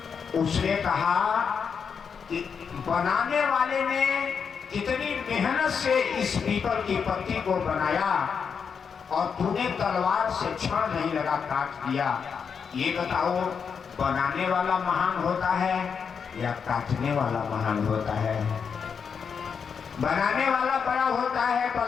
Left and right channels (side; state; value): right; quieter; 6.4 dB